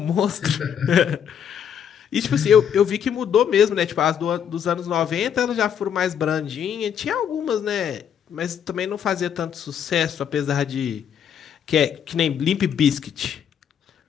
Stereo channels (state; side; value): quieter; right; 8.5 dB